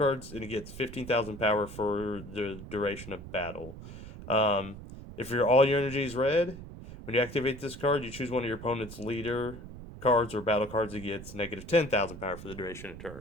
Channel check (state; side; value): noise; right; rumble, 13 dB below the sound